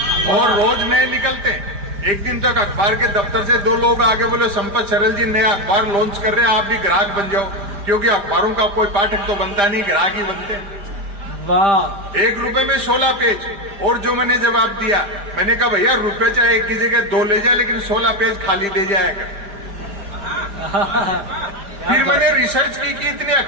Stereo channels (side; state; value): left; late; 5.0 ms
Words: और रोज नए निकलते हैं। एक दिन तक अखबार के दफ्तर से 2 लोग आगे बोले, संपत सरल जी नया अखबार लॉन्च कर रहे हैं, आप भी ग्राहक बन जाओ। क्योंकि अखबारों का कोई पाठक तो बनता नहीं, ग्राहक ही बनते हैं। वाह। 1 रुपए में 16 पेज। और जो मैंने जवाब दिया, मैंने कहा भैया रुपए चाहे 1 की जगह 2 ले जाए, लेकिन 16 पेज खाली दे जाएगा। फिर मैंने रिसर्च की कि इतने